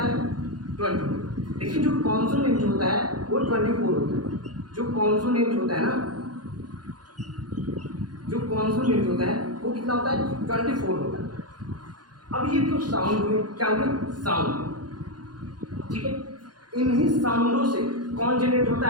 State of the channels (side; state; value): left; late; 0.69 ms